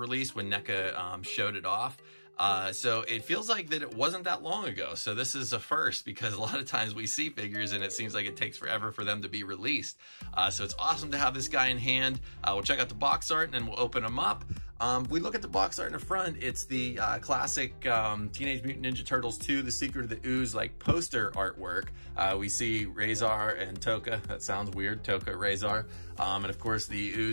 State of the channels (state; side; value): inverted; both; correlation -1.00